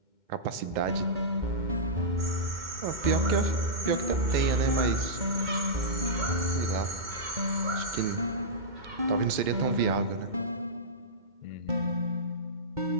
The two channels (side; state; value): left; late; 2.2 ms